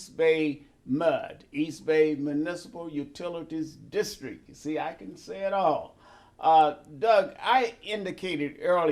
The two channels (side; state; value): both; identical; correlation 1.00